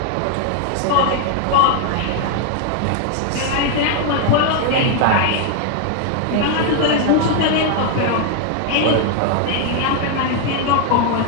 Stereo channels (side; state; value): both; different; correlation 0.00